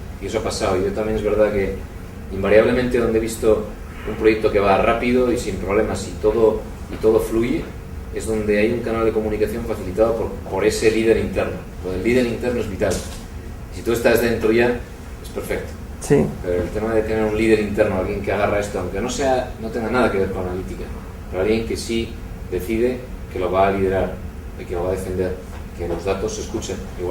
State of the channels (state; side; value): identical; both; correlation 1.00